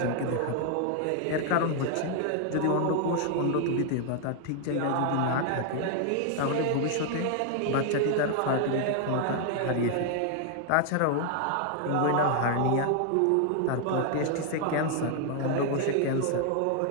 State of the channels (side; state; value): both; different; correlation 0.00